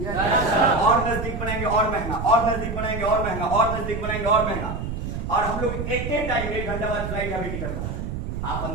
और नजदीक बनाएंगे और महंगा, और नजदीक बनाएंगे और महंगा, और नजदीक बनाएंगे और महंगा। और हम लोग एक टाइम 1 घंटा बाद फ्लाइट का भी टिकट बना रहे हैं। आप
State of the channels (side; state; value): right; noise; rumble, 5 dB below the sound